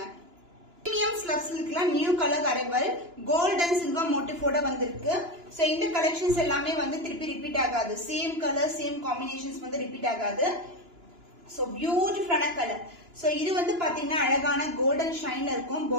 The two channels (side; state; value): left; late; 2.9 ms